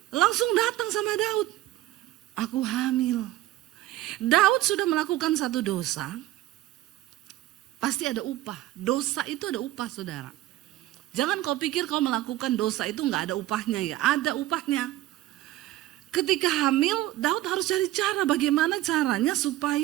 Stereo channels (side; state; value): left; quieter; 15.1 dB